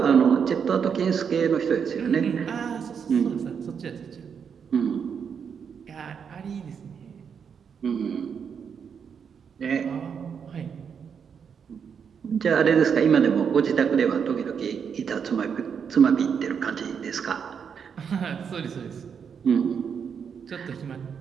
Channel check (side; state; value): left; quieter; 6.9 dB